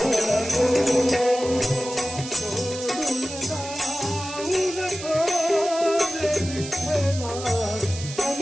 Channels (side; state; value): right; noise; hiss, 11 dB below the sound